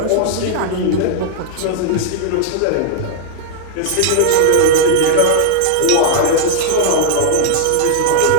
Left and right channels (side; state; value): both; different; correlation -0.01